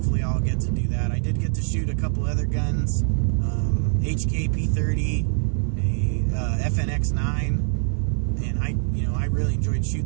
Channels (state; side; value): silent; left; digital silence